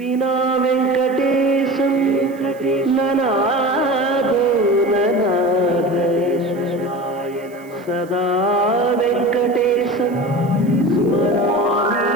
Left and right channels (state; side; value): noise; right; hiss, 28 dB below the sound